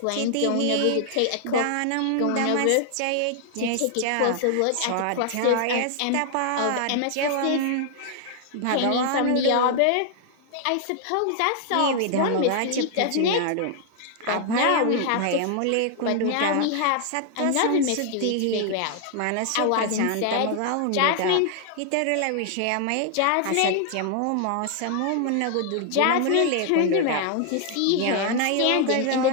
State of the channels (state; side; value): different; both; correlation 0.00